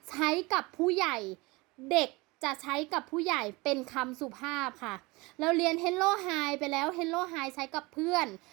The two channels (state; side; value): quieter; left; 24.0 dB